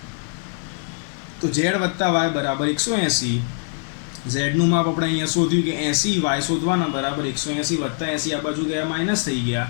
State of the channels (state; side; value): silent; right; digital silence